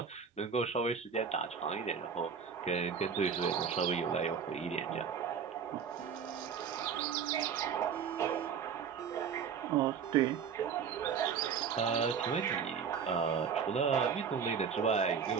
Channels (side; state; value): left; quieter; 6.7 dB